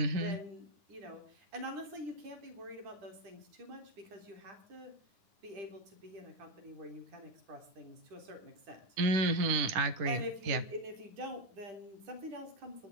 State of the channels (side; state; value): left; late; 9.8 ms